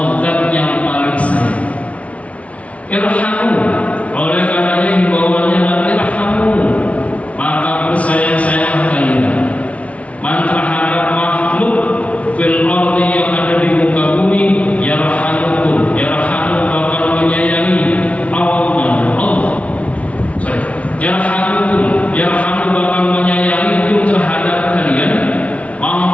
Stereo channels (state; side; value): late; right; 0.065 ms